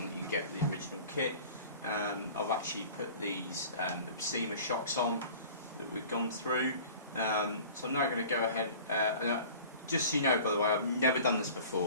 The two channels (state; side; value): inverted; both; correlation -0.44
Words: that you get with the original kit. I've actually put these Tamiya shocks on that we've gone through. So I'm now going to go ahead, just so you know, by the way, I've never done this